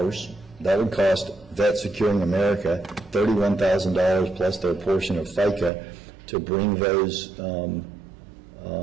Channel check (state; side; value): drops out; left; at 5.7 s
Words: That would cost Vet Securing America $31,000 plus their portion of FICA to bring those